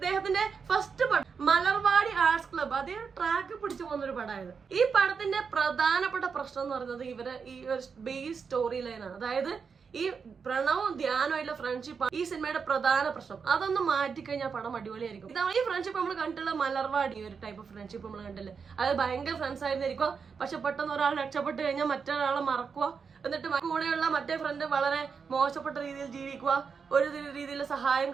ഫസ്റ്റ് പടം മലർവാടി ആർട്സ് ക്ലബ്, അതേ ട്രാക്ക് പിടിച്ചു പോകുന്ന ഒരു പടമായത്. ഈ പടത്തിന്റെ പ്രധാനപ്പെട്ട പ്രശ്നം എന്ന് പറയുന്നത് ഇവരെ ഈ ഒരു ബേസ് സ്റ്റോറി ലൈനാണ്. അതായത് ഈ പ്രണവും ധ്യാനമായിട്ടുള്ള ഫ്രണ്ട്ഷിപ്പ് ഈ സിനിമയുടെ പ്രധാന പ്രശ്നം. അതൊന്ന് മാറ്റിക്കഴിഞ്ഞാൽ പടം അടിപൊളിയായിരിക്കും. ഇതാണ് ഈ ഫ്രണ്ട്ഷിപ്പ് നമ്മൾ കണ്ടിട്ടുള്ള മലർവാടി ഒരു ടൈപ്പ് ഓഫ് ഫ്രണ്ട്ഷിപ്പ് നമ്മൾ കണ്ടില്ലേ. അത് ഭയങ്കര ഫ്രണ്ട്സ് ആയിരുന്നിരിക്കുക, പക്ഷെ പെട്ടെന്ന് ഒരാൾ രക്ഷപ്പെട്ട് കഴിഞ്ഞാൽ മറ്റൊരാളെ മറക്കുക, എന്നിട്ട് കൂടെയുള്ള മറ്റേ ഫ്രണ്ട് വളരെ മോശപ്പെട്ട രീതിയിൽ ജീവിക്കുക, ഒരു രീതിയിൽ സഹായം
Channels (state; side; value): quieter; left; 5.8 dB